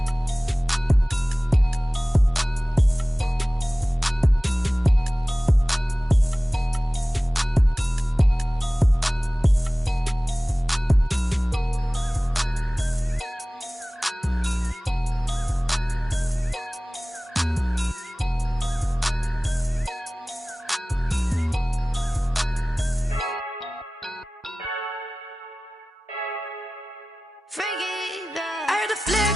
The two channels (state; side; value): normal; both; correlation 0.97